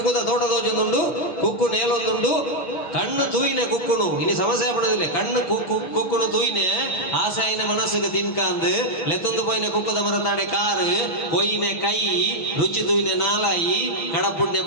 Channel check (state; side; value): late; right; 6.4 ms